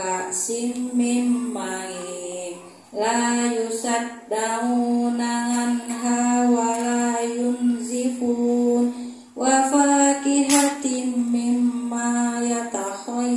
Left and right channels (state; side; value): identical; both; correlation 1.00